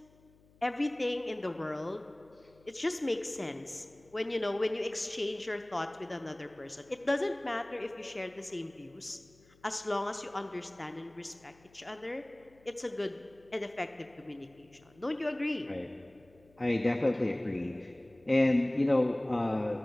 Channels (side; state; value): left; noise; hum, 29 dB below the sound